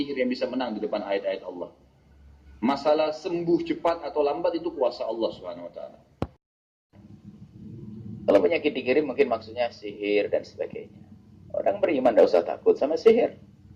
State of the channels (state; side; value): identical; both; correlation 1.00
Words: yang bisa menang di depan ayat-ayat Allah. Masalah sembuh cepat atau lambat itu kuasa Allah SWT. Kalau penyakit dikirim mungkin maksudnya sihir dan sebagainya. Orang beriman tidak usah takut sama sihir.